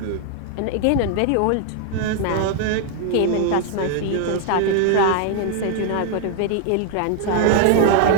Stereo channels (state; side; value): different; both; correlation 0.00